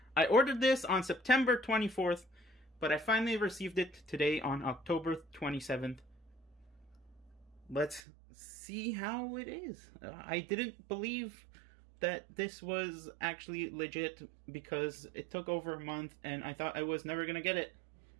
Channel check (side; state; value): left; drops out; at 8.0 s